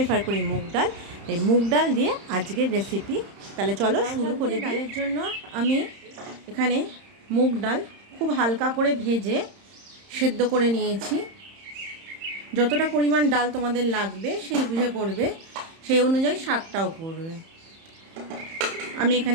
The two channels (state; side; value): late; left; 31 ms